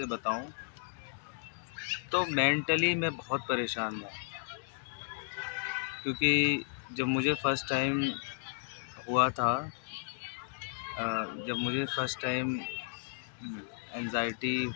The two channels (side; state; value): right; silent; digital silence